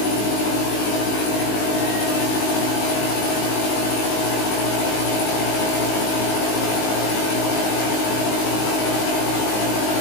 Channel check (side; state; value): right; late; 19 ms